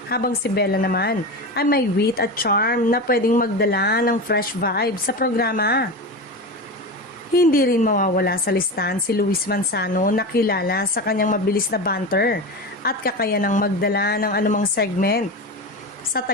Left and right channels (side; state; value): both; normal; correlation 0.23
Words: Habang si Bella naman ay may wit at charm na pwedeng magdala ng fresh vibe sa programa. Hindi rin mawawala sa listahan si Luis Manzano na kilala sa kanyang mabilis na banter at kakayanang magdala ng anumang segment. Sa